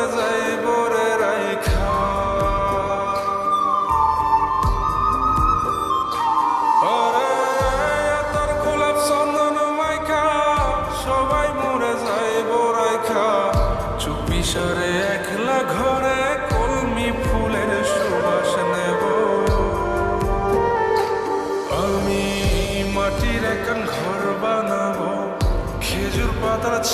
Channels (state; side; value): identical; both; correlation 1.00